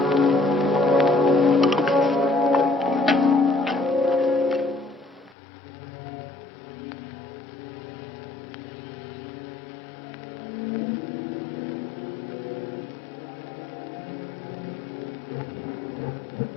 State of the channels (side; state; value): right; drops out; at 5.4 s